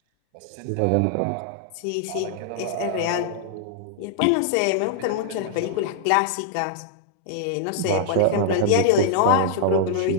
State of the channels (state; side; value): different; both; correlation -0.01